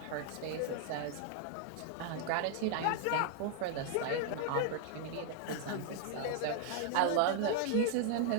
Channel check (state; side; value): different; both; correlation 0.00